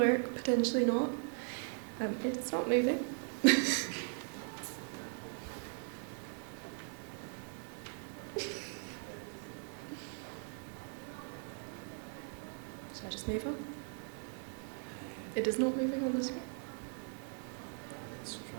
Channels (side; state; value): left; silent; 52 dB below the other